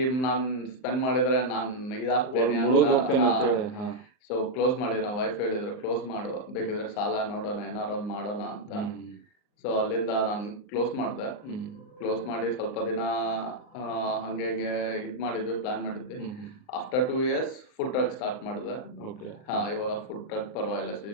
ನಾನ್ ಸ್ಪೆಂಡ್ ಮಾಡಿದ್ರೆ ನಾನ್ ಇದಾಗ್ತೇನೆ ಅಂತ ಹೇಳಿ. ಸೊ ಕ್ಲೋಸ್ ಮಾಡಿದ್ವಿ. ನಮ್ಮ ವೈಫ್ ಹೇಳಿದ್ರು, ಕ್ಲೋಸ್ ಮಾಡು, ಬೇಕಿದ್ರೆ ಸಾಲ ನೋಡೋಣ, ಏನಾರು ಒಂದು ಮಾಡೋಣ ಅಂತ. ಸೊ ಅಲ್ಲಿಂದ ನಾನು ಕ್ಲೋಸ್ ಮಾಡಿದೆ. ಕ್ಲೋಸ್ ಮಾಡಿ ಸ್ವಲ್ಪ ದಿನ ಹಂಗೆ ಇದು ಮಾಡಿದ್ವಿ, ಪ್ಲಾನ್ ಮಾಡಿದ್ವಿ. After 2 years food truck start ಮಾಡಿದೆ. ಇವಾಗ ಫುಡ್ ಟ್ರಕ್ ಪರವಾಗಿಲ್ಲ,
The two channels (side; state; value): right; late; 38 ms